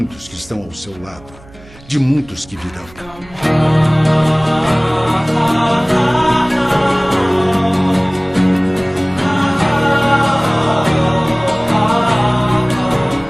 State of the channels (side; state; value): right; noise; hum, 23 dB below the sound